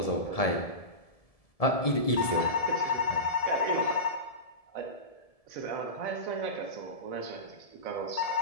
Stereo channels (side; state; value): right; late; 1.7 ms